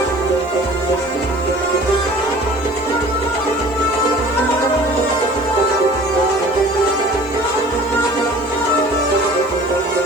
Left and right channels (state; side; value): noise; right; hiss, 28 dB below the sound